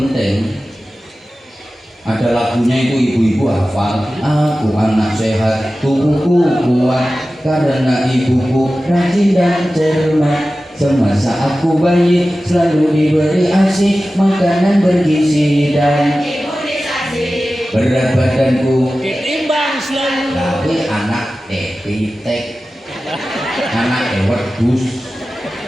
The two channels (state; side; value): normal; both; correlation 0.95